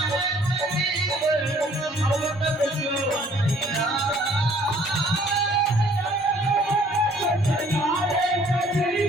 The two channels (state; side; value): normal; both; correlation 0.58